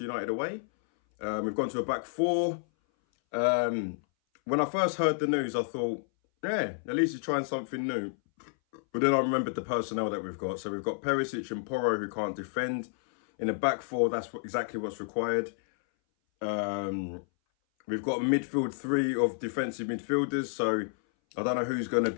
United away. We've gone to a back four. When I first heard the news, I thought, yeah, at least he's trying something new. But then I remembered the personnel that we've got. So we've got Perisic and Porro who can't defend. In a back four, that's exactly what's required. Um, We've got a midfield three of defensive midfielders, so I don't know who's going to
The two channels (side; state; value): right; silent; 58 dB below the other